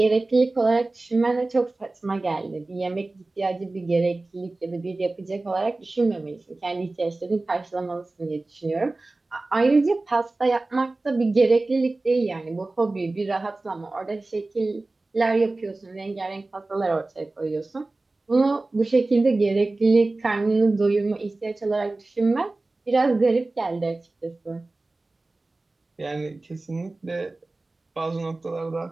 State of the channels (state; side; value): quieter; left; 3.1 dB